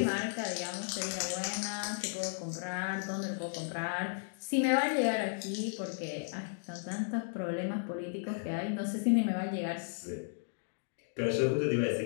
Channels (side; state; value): right; silent; digital silence